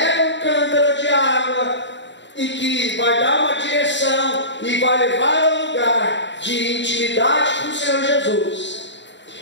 um cântaro de água e que vai dar uma direção e vai levar ao lugar de intimidade com o Senhor Jesus.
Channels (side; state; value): right; late; 0.53 ms